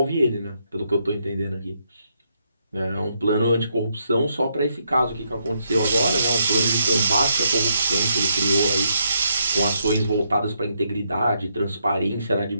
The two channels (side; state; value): both; inverted; correlation -0.77